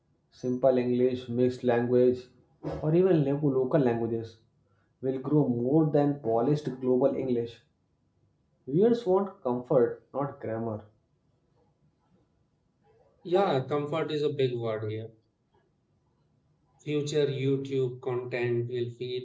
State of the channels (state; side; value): identical; both; correlation 1.00